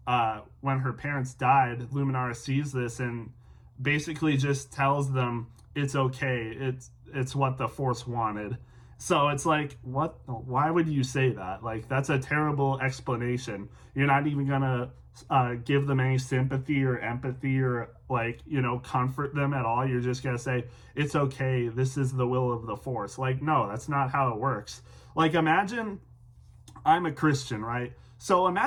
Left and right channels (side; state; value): both; identical; correlation 1.00